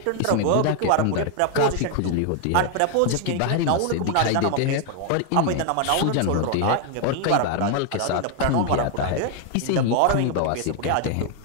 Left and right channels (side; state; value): both; different; correlation 0.00